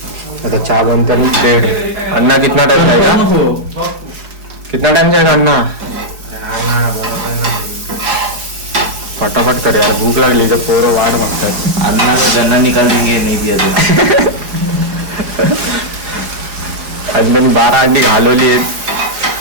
आता चहा बनता ब्रेड. अन्ना कितना टाइम जाएगा? कितना टाइम जाएगा अन्ना? फटाफट कर यार, भूक लागली तर पोरं वाट मागतात. अन्ना का गन्ना निकाल देंगे नहीं दिया तो. अन्नाने 12 अंडी घालवली आहेत.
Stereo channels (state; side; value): late; left; 4.8 ms